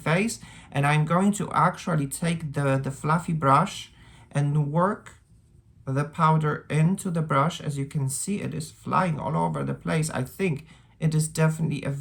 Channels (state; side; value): identical; both; correlation 1.00